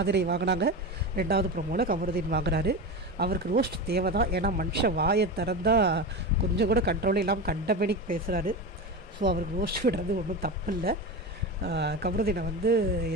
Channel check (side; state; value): both; normal; correlation 0.23